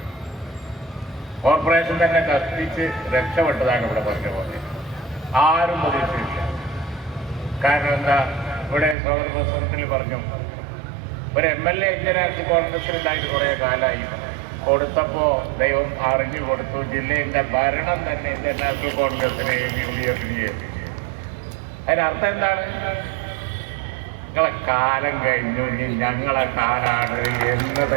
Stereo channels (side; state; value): left; drops out; at 9.0 s